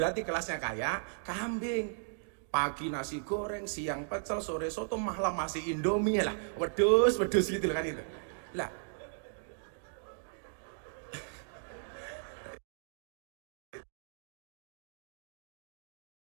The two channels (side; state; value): left; silent; digital silence